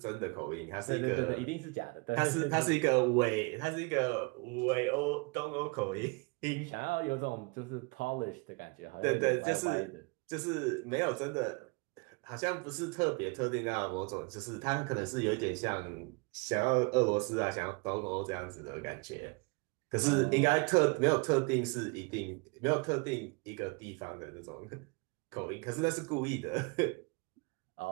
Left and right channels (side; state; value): left; quieter; 30.0 dB